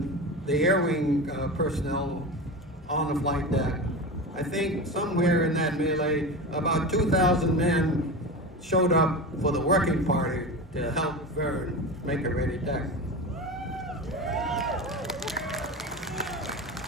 the air wing personnel on the flight deck, I think somewhere in that melee, about 2,000 men showed up for the working party to help Vern make a ready deck.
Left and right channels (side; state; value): both; normal; correlation 0.26